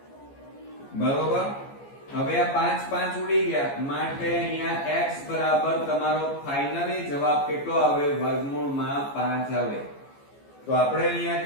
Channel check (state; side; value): late; right; 14 ms